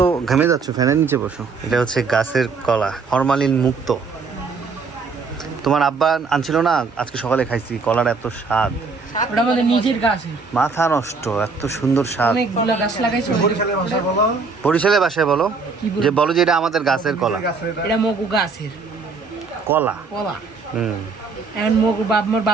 ঘেমে যাচ্ছ, ফ্যানের নিচে বসো। এটা হচ্ছে গাছের কলা, ফরমালিন মুক্ত। তোমার আব্বা আনছিল না, আজকে সকালে খাইছি। কলার এত স্বাদ, ওটা আমাদের নিজের গাছ। মাথা নষ্ট, এত সুন্দর স্বাদ। অনেকগুলো গাছ লাগাইছে। বরিশালের ভাষায় বলো, বরিশালের বাসায় বলো, যে বলো যে এটা আমাদের গাছের কলা। এটা মগু গাছের কলা। কলা। হুম, এখন মগু মোর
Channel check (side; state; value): left; quieter; 4.6 dB